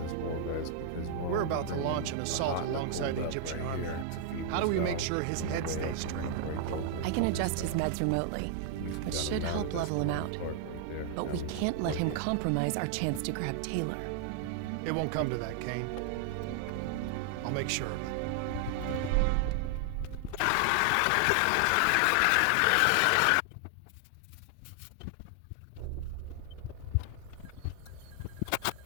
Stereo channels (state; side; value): different; both; correlation 0.00